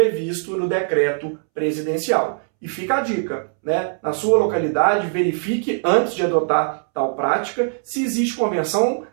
no decreto presidencial. E fica a dica, né? Na sua localidade, verifique antes de adotar tal prática se existe convenção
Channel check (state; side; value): silent; left; 65 dB below the other